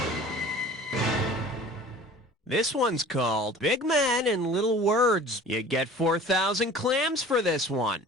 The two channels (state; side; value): normal; both; correlation 0.44